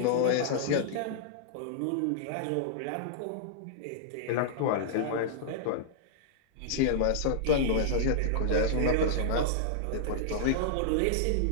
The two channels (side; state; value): both; different; correlation -0.02